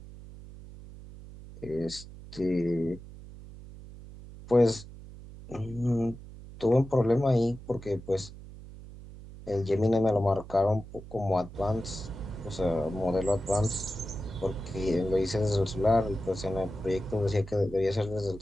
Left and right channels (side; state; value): right; noise; hum, 15 dB below the sound